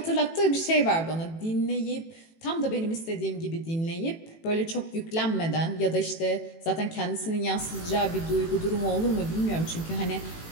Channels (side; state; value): right; late; 18 ms